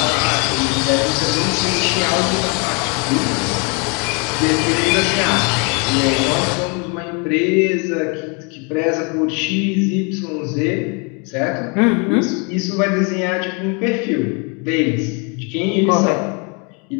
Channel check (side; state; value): right; quieter; 34.0 dB